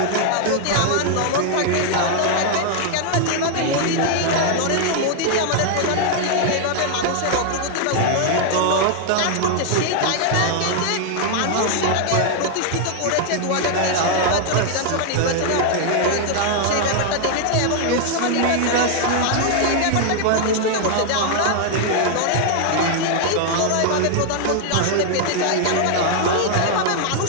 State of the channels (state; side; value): different; both; correlation 0.00